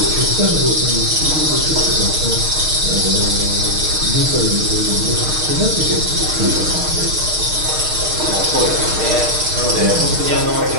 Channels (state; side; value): late; left; 6.5 ms